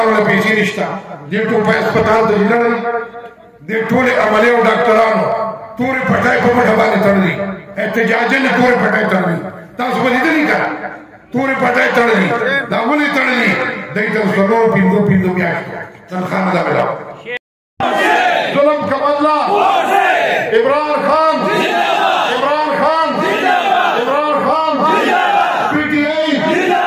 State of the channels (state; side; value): identical; both; correlation 1.00